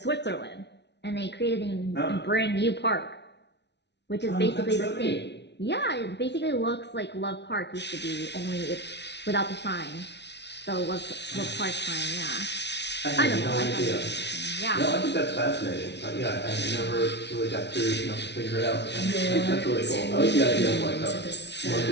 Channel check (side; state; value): right; late; 0.50 ms